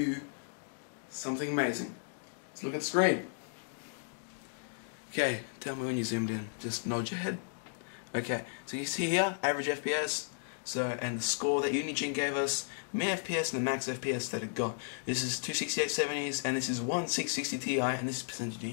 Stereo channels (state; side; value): silent; right; digital silence